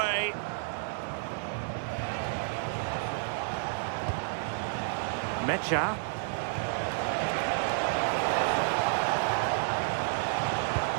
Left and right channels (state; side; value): silent; left; digital silence